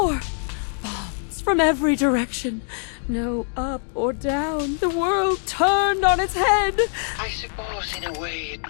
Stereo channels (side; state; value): right; silent; 58 dB below the other